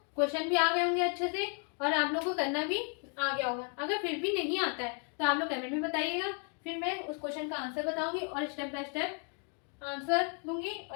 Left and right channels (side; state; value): right; quieter; 39.9 dB